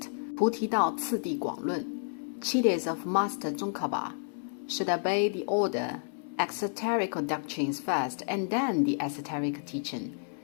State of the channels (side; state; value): right; silent; 57 dB below the other